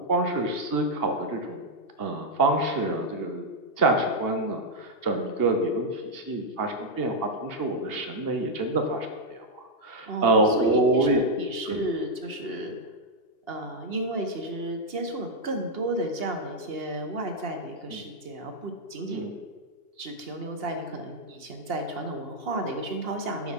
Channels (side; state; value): right; late; 2.8 ms